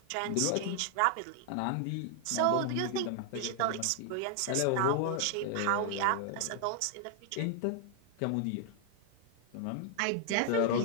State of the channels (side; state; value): both; different; correlation 0.00